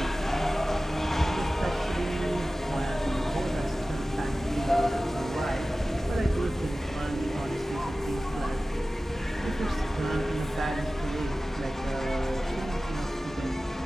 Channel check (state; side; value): normal; both; correlation 0.96